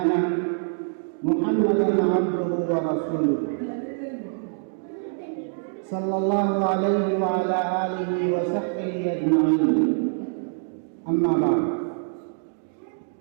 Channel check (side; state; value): left; silent; digital silence